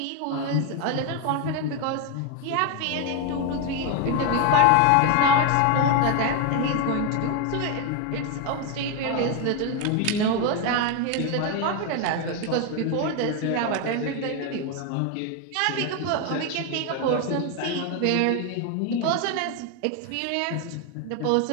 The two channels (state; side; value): different; both; correlation 0.01